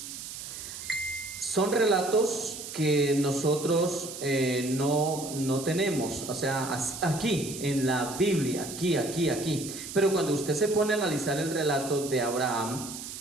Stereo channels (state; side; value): noise; right; hiss, 10 dB below the sound